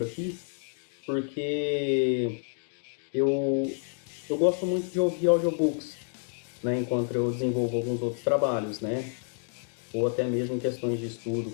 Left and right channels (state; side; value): silent; right; 57 dB below the other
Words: aqui, porque eu, eu gosto muito de ouvir audiobooks, né, enquanto eu desenvolvo alguns outros trabalhos, né, ou até mesmo em questões de estudo,